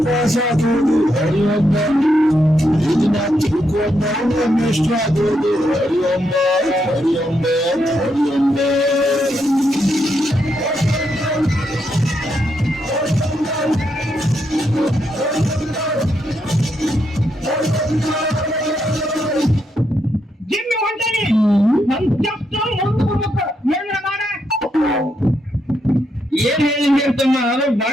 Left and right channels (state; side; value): normal; both; correlation 0.80